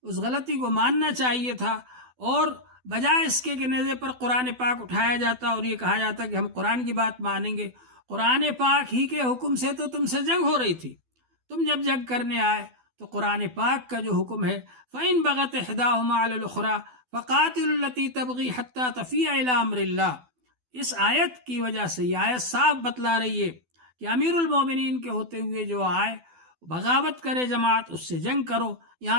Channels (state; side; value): late; left; 12 ms